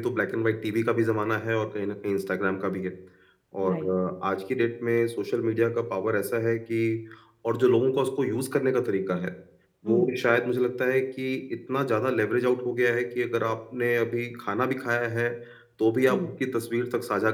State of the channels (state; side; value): identical; both; correlation 1.00